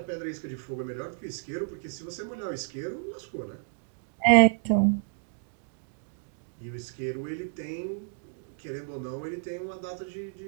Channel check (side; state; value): left; silent; digital silence